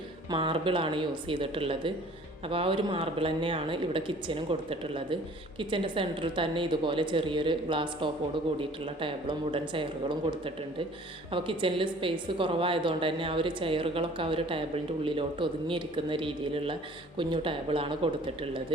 മാർബിളാണ് യൂസ് ചെയ്തിട്ടുള്ളത്. അപ്പോൾ ആ ഒരു മാർബിൾ തന്നെയാണ് ഇവിടെ കിച്ചനും കൊടുത്തിട്ടുള്ളത്. കിച്ചൻ്റെ സെൻറ്ററിൽ തന്നെ ഇതുപോലെ ചെറിയൊരു ഗ്ലാസ് ടോപ്പോട് കൂടിയിട്ടുള്ള ടേബിളും വുഡൻ ചെയറുകളും കൊടുത്തിട്ടുണ്ട്. അപ്പോൾ കിച്ചണിൽ സ്പേസ് കുറവായതുകൊണ്ട് തന്നെ ആ ഒരു ചെയറുകളൊക്കെ ആ ഒരു ടേബിളിൻ്റെ ഉള്ളിലോട്ട് ഒതുങ്ങിയിരിക്കുന്ന രീതിയിലുള്ള കുഞ്ഞു ടേബിളാണ് കൊടുത്തിട്ടുള്ളത്.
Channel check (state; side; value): normal; both; correlation 0.51